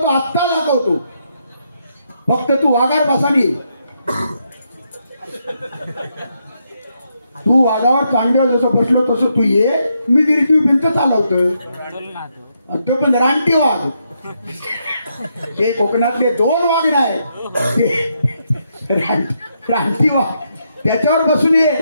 आत्ता दाखवतो, फक्त तू वाघावर बसानी. तू वाघावर चांगदेव जसं बसलो तसं तू ये, मी निर्जीव भिंत चालवतो. ते पण रानटी वाघ. ते कोकणातले 2 वाघ नाही, ते रानटी वाघ. त्याच्यावर बसून ये.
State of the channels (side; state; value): both; inverted; correlation -0.79